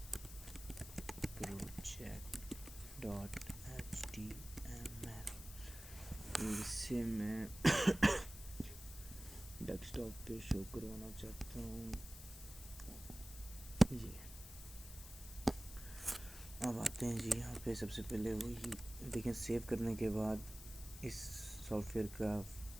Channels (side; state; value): left; noise; hiss, 14 dB below the sound